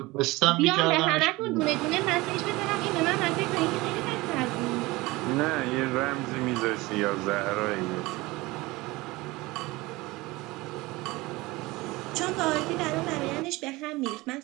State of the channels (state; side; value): quieter; left; 21.4 dB